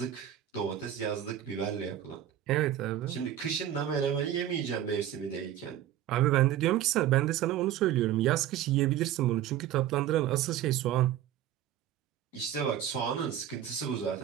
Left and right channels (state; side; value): quieter; left; 11.3 dB